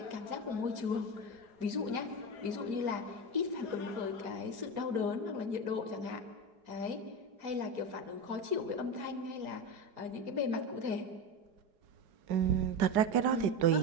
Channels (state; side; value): late; left; 4.8 ms